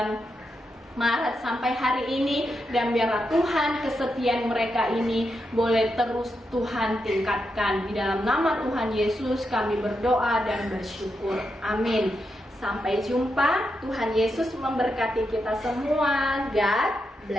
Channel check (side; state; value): both; normal; correlation 0.85